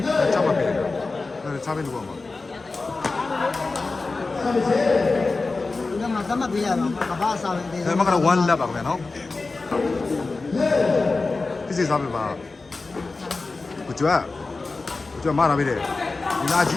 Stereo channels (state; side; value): quieter; right; 3.7 dB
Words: ချမ်းပါပြီဒါချမ်းပဲလို့ပါမှာ ဒီမှာသမတ်ပြရတော့ကဘာစားပဲ မကတော့1 lap ပါခင်ဗျာနော်ဒီစီစားပေးပါကိုကျွတ်မာလာပြီတဲ့ဒီလာကြ